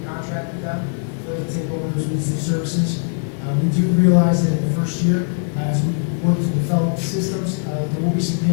contract with them for them to take over those business services. We do realize that in the first year, as we work to develop systems, there will be some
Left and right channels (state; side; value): silent; right; 65 dB below the other